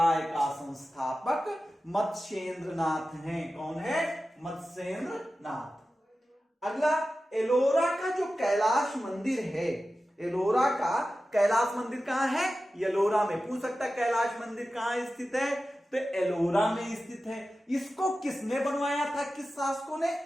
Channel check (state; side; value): normal; both; correlation 0.94